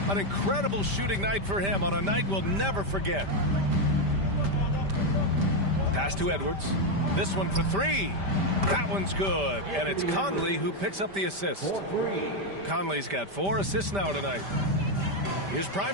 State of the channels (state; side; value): late; left; 5.1 ms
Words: An incredible shooting night for him on a night we'll never forget. Pass to Edwards. This one for three. That one's good. And it's Conley who picks up the assist. Conley's got 4 assists now tonight. Here's